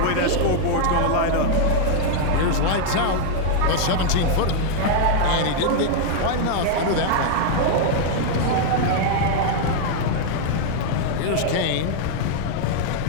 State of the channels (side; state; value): both; different; correlation 0.00